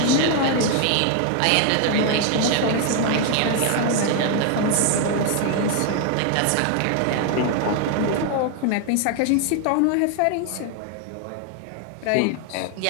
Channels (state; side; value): different; both; correlation 0.01